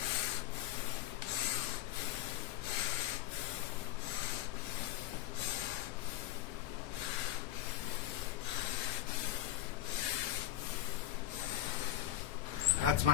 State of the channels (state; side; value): quieter; right; 13.1 dB